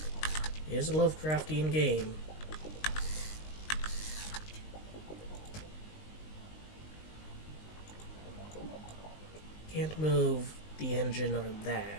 It is a Lovecraftian game. Can't move the engine on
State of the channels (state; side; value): late; right; 19 ms